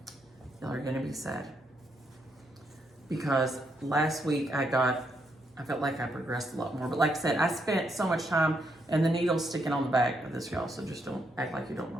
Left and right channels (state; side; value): normal; both; correlation 0.77